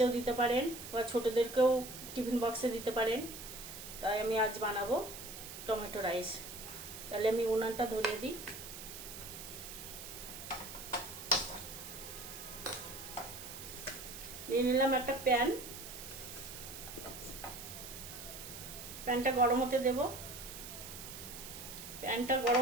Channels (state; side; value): noise; right; hiss, 11 dB below the sound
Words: দিতে পারেন বা ছোটদেরকেও টিফিন বক্সে দিতে পারেন। তাই আমি আজ বানাবো টমেটো রাইস। তাহলে আমি উনানটা ধরিয়ে দিই। নিয়ে নিলাম একটা প্যানটা গরম হতে দেব। প্যানটা